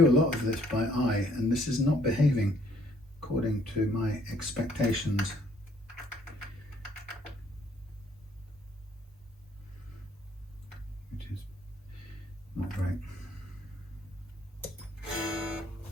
a lot of this by eye, and this is not behaving according to my expectations. Which is not great.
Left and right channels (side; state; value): both; normal; correlation 0.64